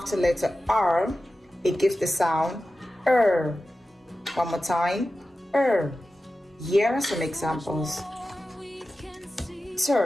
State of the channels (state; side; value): normal; both; correlation 0.94